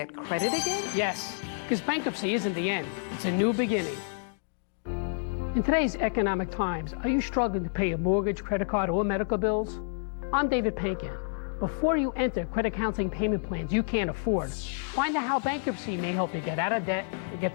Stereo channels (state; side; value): silent; right; digital silence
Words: credit again? Yes, because bankruptcy isn't the end. It's a new beginning. In today's economic times, are you struggling to pay your mortgage, credit card, or medical bills? I'm David Pankin. Before you enter credit counseling payment plans you can't afford, find out how bankruptcy may help you get out of debt and get